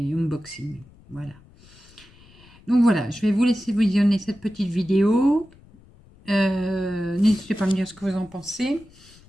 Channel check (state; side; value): noise; left; rumble, 26 dB below the sound